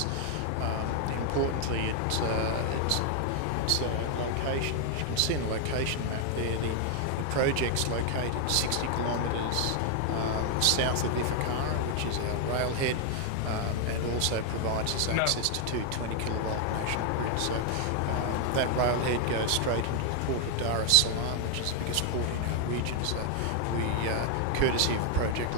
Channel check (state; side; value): different; both; correlation 0.00